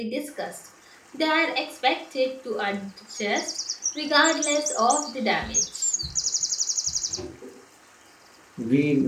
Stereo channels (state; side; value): identical; both; correlation 1.00